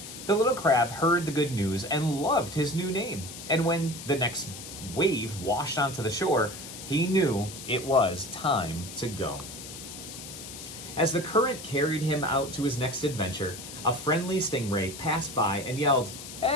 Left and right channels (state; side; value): noise; left; hiss, 12 dB below the sound